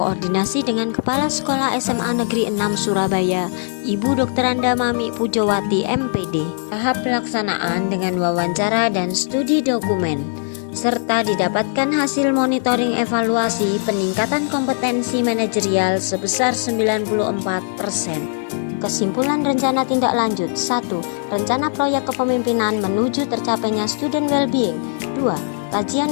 dengan Kepala Sekolah SMA Negeri 6 Surabaya, Ibu Dr. Anda Mami Pujowati MPD. Tahap pelaksanaan dengan wawancara dan studi dokumen, serta didapatkan hasil monitoring evaluasi peningkatan kompetensi manajerial sebesar 94%. Kesimpulan rencana tindak lanjut: 1. Rencana proyek kepemimpinan menuju tercapainya student well-being. 2.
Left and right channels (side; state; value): right; silent; 66 dB below the other